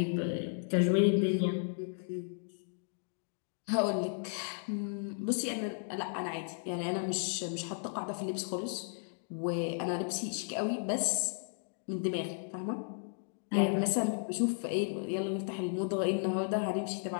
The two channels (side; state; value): right; silent; digital silence